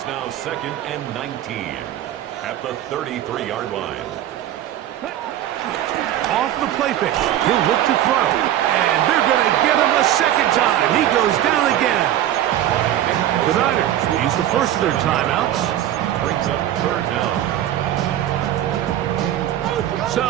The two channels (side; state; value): left; quieter; 12.2 dB